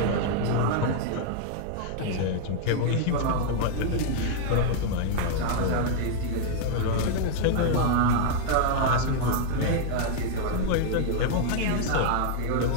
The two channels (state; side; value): different; both; correlation -0.01